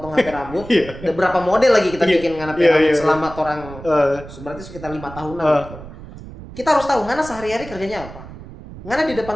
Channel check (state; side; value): noise; right; rumble, 15 dB below the sound